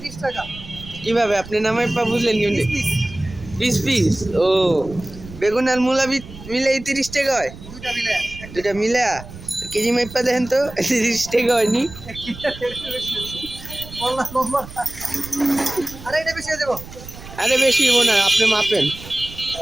কিভাবে আপনি নামাই পা বুঝলেন কেমনি? Piece piece. ও, বেগুন আর মূলা মিলে 30 টাকা হয়? দুটা মিলে কেজি মাইপা দেখেন তো, 30 টাকা হয়নি? আরে বেশি হবো না, আপনি মাপেন।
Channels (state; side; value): noise; right; rumble, 15 dB below the sound